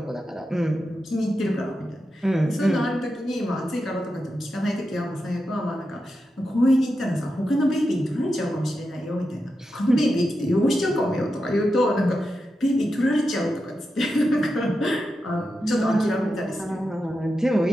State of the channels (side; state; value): both; normal; correlation 0.89